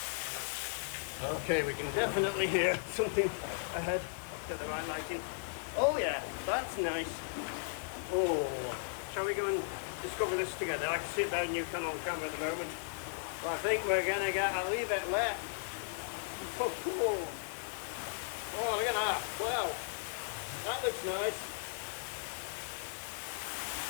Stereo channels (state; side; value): silent; right; digital silence